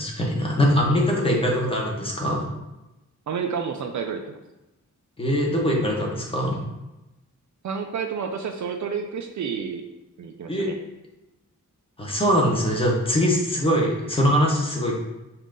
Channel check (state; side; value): normal; both; correlation 0.43